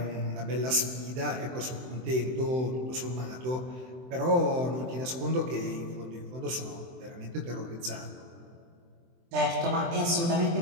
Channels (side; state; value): left; late; 23 ms